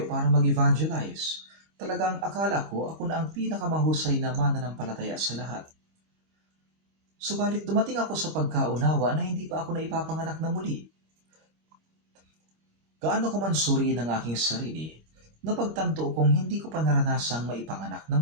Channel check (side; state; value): left; late; 25 ms